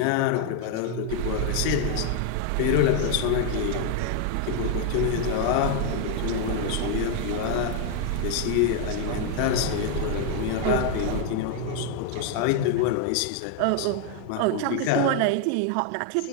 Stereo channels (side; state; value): both; different; correlation 0.01